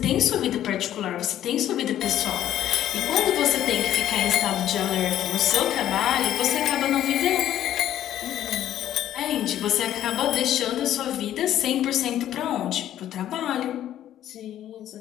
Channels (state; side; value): quieter; right; 11.8 dB